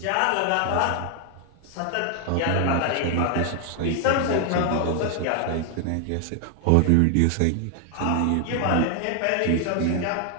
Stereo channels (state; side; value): different; both; correlation 0.00